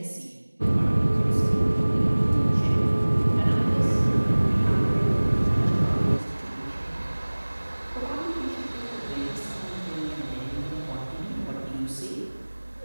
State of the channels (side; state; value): both; inverted; correlation -1.00